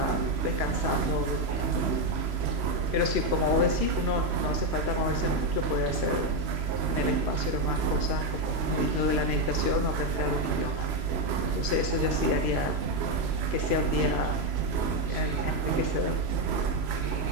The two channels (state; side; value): late; left; 3.0 ms